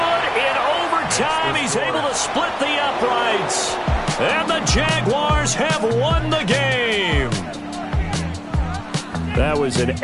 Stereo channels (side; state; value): both; identical; correlation 1.00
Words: in overtime. He's able to split the uprights. And the Jaguars have won the game. That was an